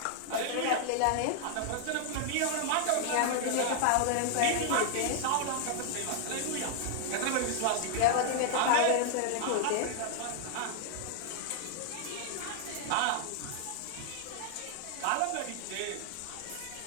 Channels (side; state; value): both; different; correlation 0.00